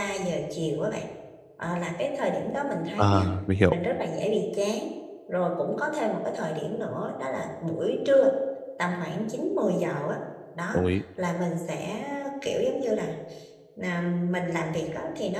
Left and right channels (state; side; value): identical; both; correlation 1.00